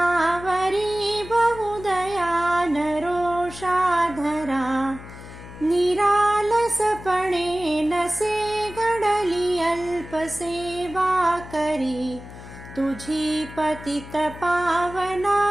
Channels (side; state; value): left; noise; hum, 15 dB below the sound